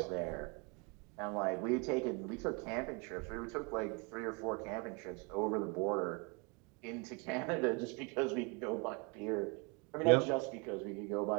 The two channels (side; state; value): left; quieter; 30.8 dB